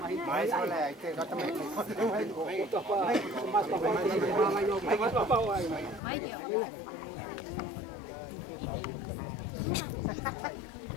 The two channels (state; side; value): drops out; right; at 6.0 s